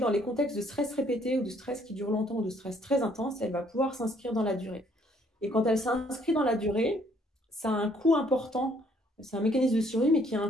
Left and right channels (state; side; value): normal; both; correlation 0.64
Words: les contextes de stress répété ou de stress qui dure longtemps ou de stress très intense, elle va pouvoir s'inscrire dans la durée. Et quand elle s'inscrit dans la durée, ça a un coût important. C'est un mécanisme de survie, mais qui a